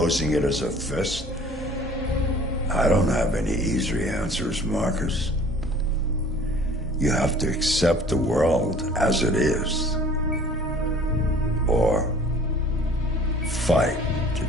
it as a fist. I don't have any easy answers, Marcus. You have to accept the world as it is, or fight to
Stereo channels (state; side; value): normal; both; correlation 0.49